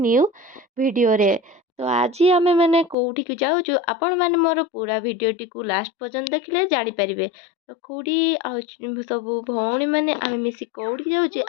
वीडियो रे। तो आज आमे माने कोठी के जाउछु, आपण माने मोर पूरा वीडियो टी को लास्ट पर्यंत देखले जानि परिबे। तो कोडी आ सब भौणी माने आमे मिसी कोठी जाउछु,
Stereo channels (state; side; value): drops out; right; at 3.0 s